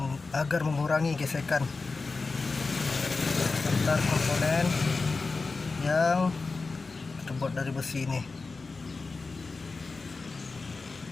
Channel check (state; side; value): quieter; right; 4.0 dB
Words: agar mengurangi gesekan antar komponen yang terbuat dari besi ini.